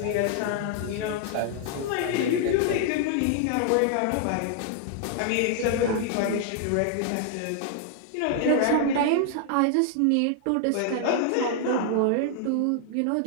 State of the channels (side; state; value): both; different; correlation 0.00